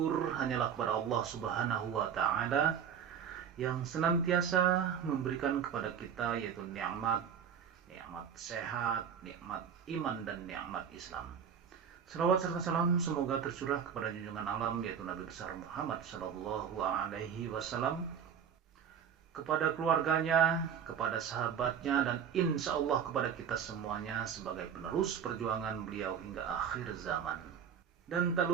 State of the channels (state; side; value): quieter; left; 7.8 dB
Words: hanyalah kepada Allah Subhanahu wa Ta'ala yang senantiasa memberikan kepada kita yaitu nikmat sehat, nikmat iman, dan nikmat Islam. Salawat serta salam semoga tercurah kepada junjungan alam yaitu Nabi besar Muhammad sallallahu alaihi wasallam, kepada keluarganya, kepada sahabatnya, dan insya Allah kepada kita semuanya sebagai penerus perjuangan beliau hingga akhir zaman. Dan tak